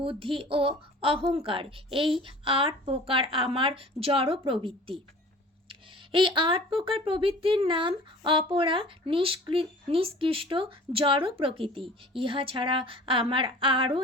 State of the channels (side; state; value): both; normal; correlation 0.45